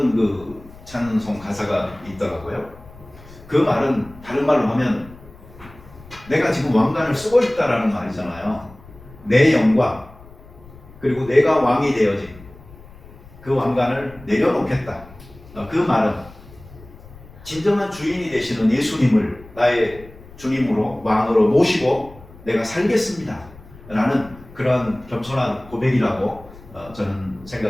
그 찬송 가사가 있더라고요. 그 말은 다른 말로 하면 내가 지금 왕관을 쓰고 있다라는 말이잖아요. 내 영광, 그리고 내가 왕이 되어진 그 왕관을 내려놓겠다. 그 말은 진정한 주인이 되시는 예수님을 나의 주님으로 왕으로 모시고 내가 살겠습니다 라는 그런 겸손한 고백이라고 저는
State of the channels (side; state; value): left; noise; rumble, 20 dB below the sound